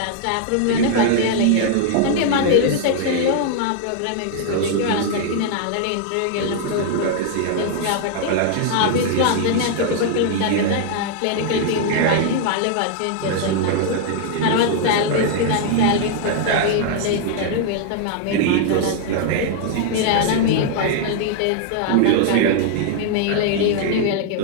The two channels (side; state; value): both; different; correlation 0.00